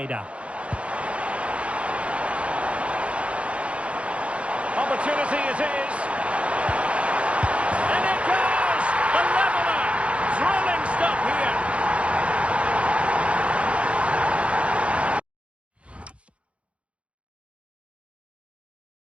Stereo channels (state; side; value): late; left; 0.061 ms